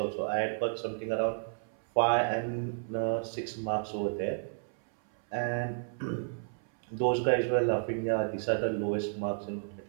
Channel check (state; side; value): silent; left; 57 dB below the other